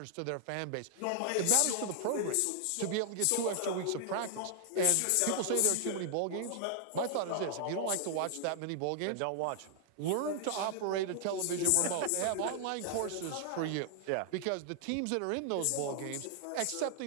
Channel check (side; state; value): both; different; correlation 0.00